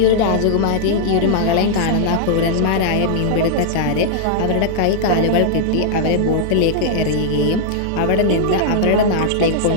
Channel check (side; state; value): both; different; correlation -0.01